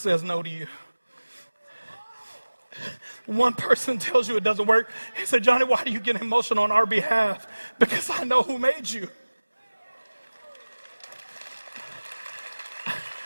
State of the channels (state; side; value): inverted; both; correlation -1.00